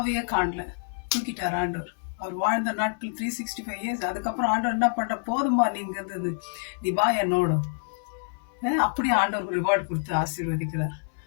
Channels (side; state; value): right; silent; digital silence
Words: காணல. தூக்கிட்டார் ஆண்டவர். அவர் வாழ்ந்த நாட்கள் 365 இயர்ஸ். அதுக்கப்புறம் ஆண்டவர் என்ன பண்ற, போதுமா நீங்க இருந்தது, நீ வா என்னோட. அப்படியே ஆண்டவர் ரிவார்டு கொடுத்து ஆசீர்வதிக்கிறார்.